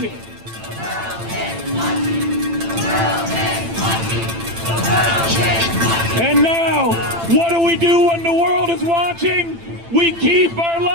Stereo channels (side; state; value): left; late; 8.9 ms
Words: And now, what do we do when the world is watching? We keep our